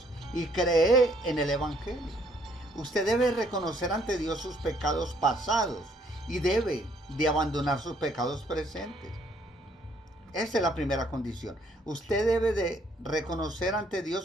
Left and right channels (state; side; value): normal; both; correlation 0.65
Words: y creed en el evangelio. Usted debe reconocer ante Dios sus pecados pasados y debe de abandonar sus pecados presentes. Esa es la primera condición. Usted debe de reconocer ante